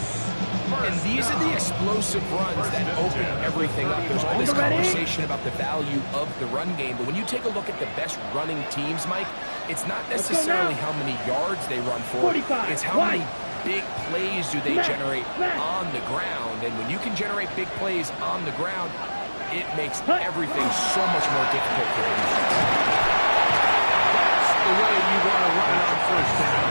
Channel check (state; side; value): inverted; both; correlation -1.00